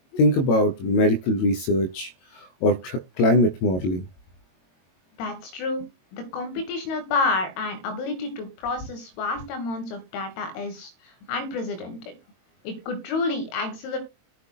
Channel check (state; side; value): late; right; 22 ms